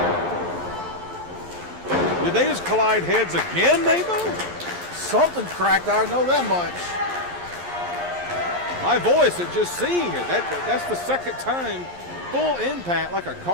Did they just collide heads again, Maybo? Something's cracked, I know that much. My voice at just seeing it. That's the second time. Full impact like a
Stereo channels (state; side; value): late; left; 11 ms